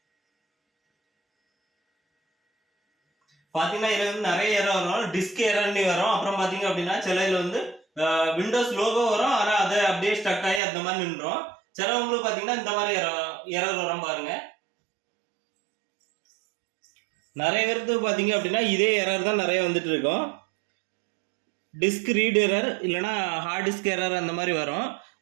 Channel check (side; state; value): left; drops out; at 10.6 s